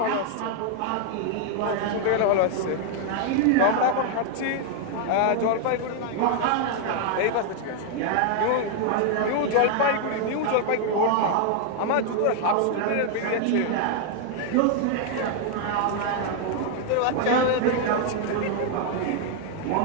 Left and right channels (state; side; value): different; both; correlation 0.00